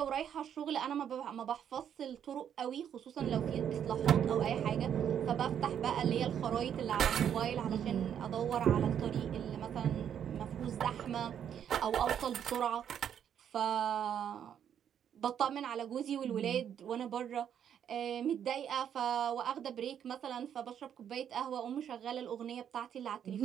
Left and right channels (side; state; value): left; quieter; 9.0 dB